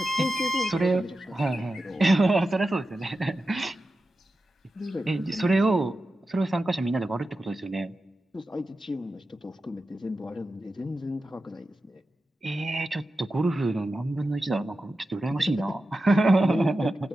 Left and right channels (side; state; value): both; normal; correlation 0.92